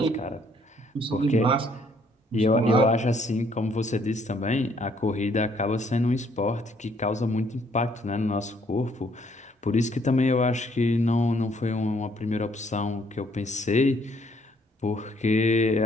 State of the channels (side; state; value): both; normal; correlation 0.66